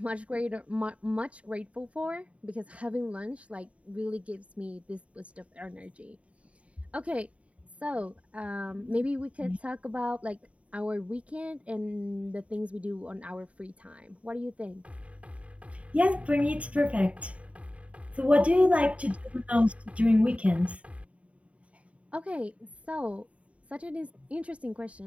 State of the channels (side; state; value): left; late; 0.065 ms